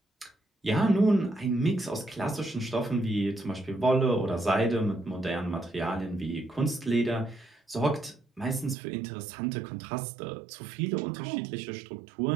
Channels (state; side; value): drops out; left; at 8.8 s